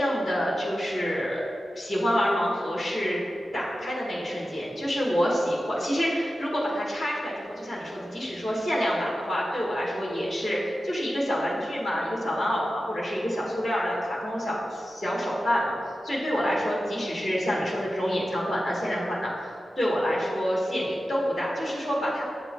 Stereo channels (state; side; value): normal; both; correlation 0.93